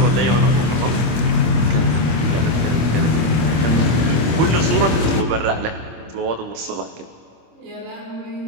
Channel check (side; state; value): left; late; 25 ms